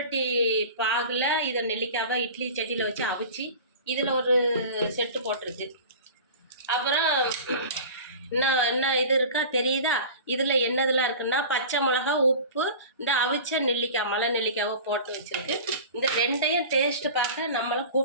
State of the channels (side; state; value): both; inverted; correlation -0.36